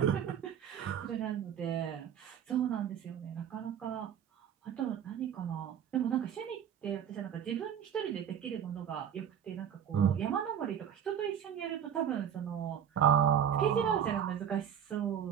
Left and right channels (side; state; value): left; quieter; 8.9 dB